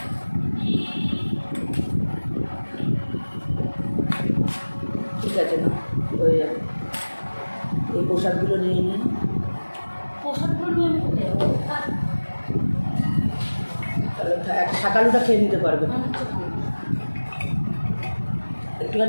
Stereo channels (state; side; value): inverted; both; correlation -1.00